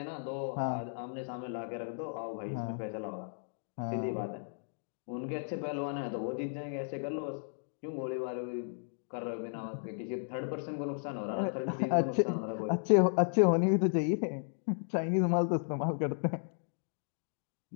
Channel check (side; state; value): right; silent; digital silence